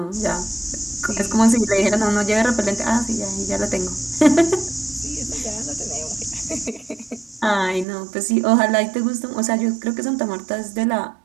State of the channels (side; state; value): left; drops out; at 7.9 s